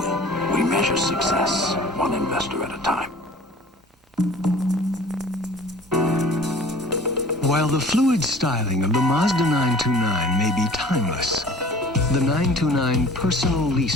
We measure success one investor at a time. While the fluid styling of the Mazda 929 may be timeless, the 929 personal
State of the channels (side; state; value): both; normal; correlation 0.46